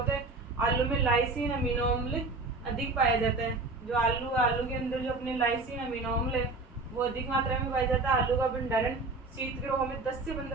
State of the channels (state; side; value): quieter; left; 3.4 dB